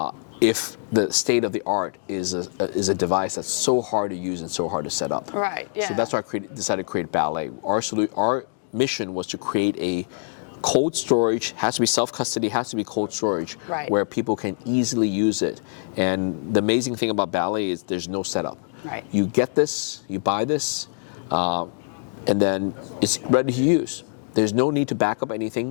if the state of the art is a device that's so hard to use and so hard to set up? Right. Yeah. So that's why I decided to create Ballet. Our mission was to create a cold storage, has to be self-custody, has to be cold storage, where people can easily use it. And the amazing thing about Ballet is there's no setup. Right. You get this, you buy this, and then it's ready to use. There's no need to back up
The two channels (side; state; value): right; silent; 62 dB below the other